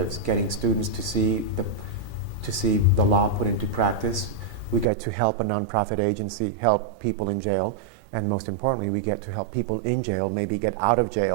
getting students to see the law put into practice. We get to help a nonprofit agency help people in jail, and most importantly, we get to help people in jail maybe get out of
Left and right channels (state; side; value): drops out; left; at 4.9 s